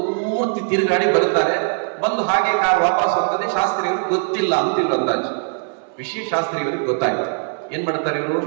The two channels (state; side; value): silent; left; 62 dB below the other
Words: ತಿರುಗಾಡಿ ಬರ್ತಾರೆ. ಬಂದು ಹಾಗೆ ಕಾರ್ ವಾಪಸ್ ಹೋಗ್ತದೆ. ಶಾಸ್ತ್ರಿಯವರಿಗೆ ಗೊತ್ತಿಲ್ಲ ಅಂತ ಇವ್ರು ಅಂದಾಜು. ವಿಷಯ ಶಾಸ್ತ್ರಿಯವರಿಗೆ ಗೊತ್ತಾಯ್ತು. ಏನ್ ಮಾಡ್ತಾರೆ ಇವರು?